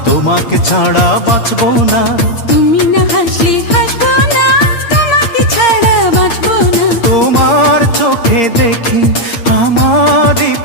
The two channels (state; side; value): late; right; 8.7 ms